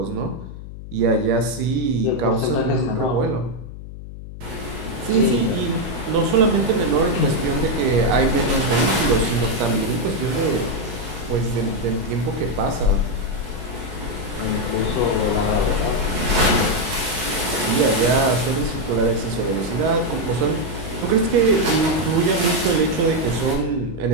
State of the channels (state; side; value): noise; left; hum, 12 dB below the sound